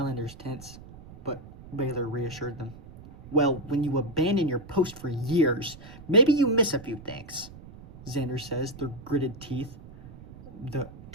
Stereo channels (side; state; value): right; noise; rumble, 18 dB below the sound